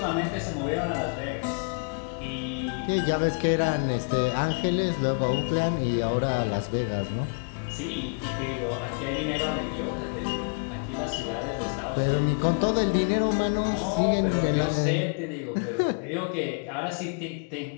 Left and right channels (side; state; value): right; quieter; 38.1 dB